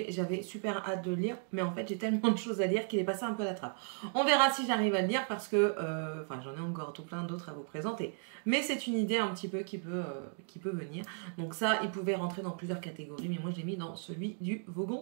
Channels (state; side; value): silent; left; 54 dB below the other